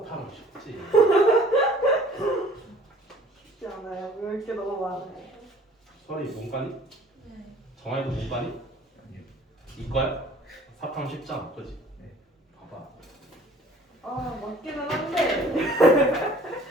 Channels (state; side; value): normal; both; correlation 0.53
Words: 사탐은 쉽지. 쉽지 않아요. 외울 게 너무 많아요. 설이 문과니? 네. 정아이도 문과니? 아니요. 이과야? 사탐 쉽잖아, 그지? 네. 봐봐. 아 맞기는 한데.